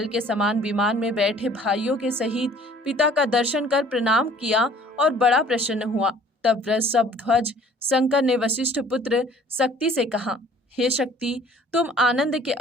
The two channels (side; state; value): both; normal; correlation 0.53